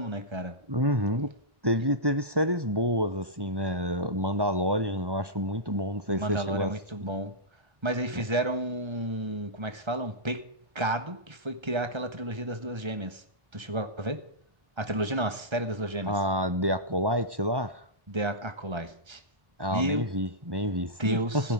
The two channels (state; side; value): late; left; 1.3 ms